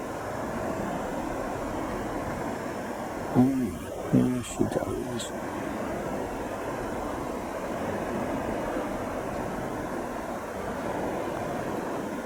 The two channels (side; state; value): both; identical; correlation 1.00